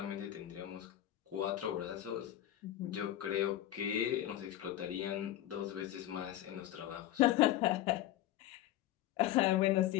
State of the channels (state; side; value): quieter; right; 13.3 dB